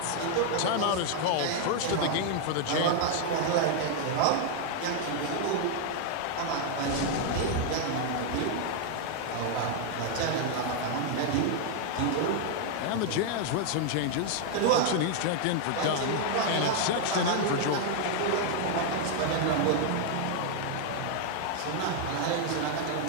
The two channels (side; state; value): both; different; correlation 0.00